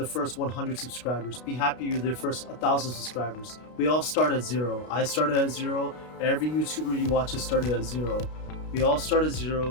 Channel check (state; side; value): late; right; 32 ms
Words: first 100 subscribers. Be happy with the first 1,000 subscribers. We all start at 0. I started at 0. Every YouTuber you watch has started at 0. We all start at